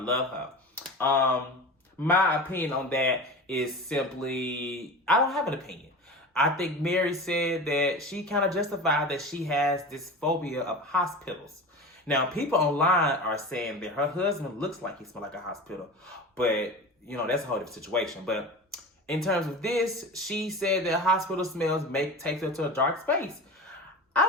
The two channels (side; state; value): both; normal; correlation 0.31